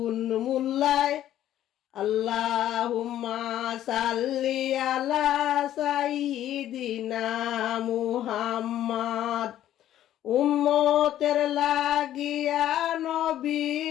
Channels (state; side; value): quieter; right; 12.2 dB